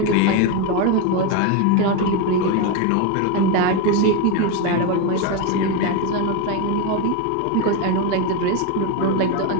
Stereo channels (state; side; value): different; both; correlation 0.03